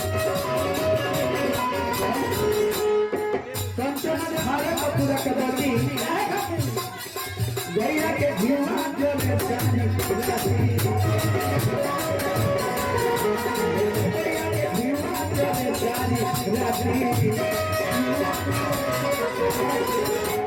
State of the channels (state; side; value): identical; both; correlation 1.00